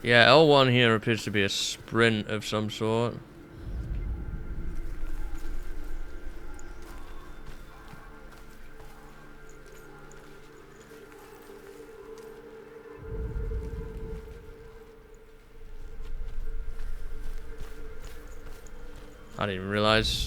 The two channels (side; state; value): both; identical; correlation 1.00